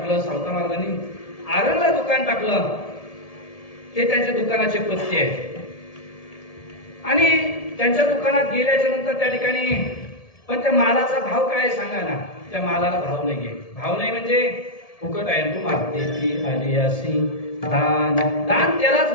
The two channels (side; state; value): right; late; 1.7 ms